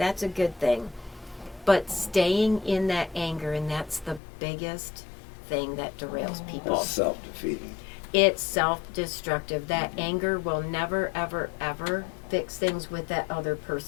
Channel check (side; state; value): right; drops out; at 4.2 s